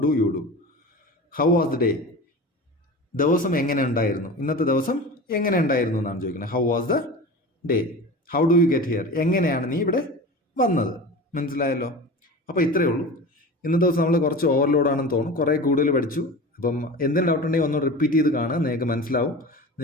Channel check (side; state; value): both; normal; correlation 0.32